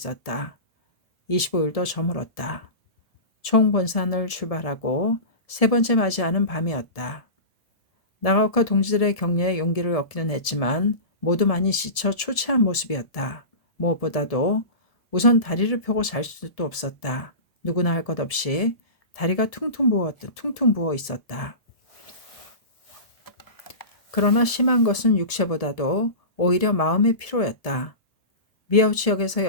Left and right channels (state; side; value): late; right; 1.7 ms